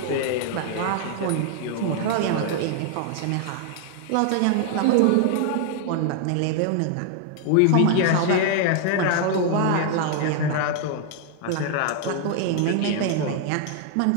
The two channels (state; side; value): different; both; correlation 0.00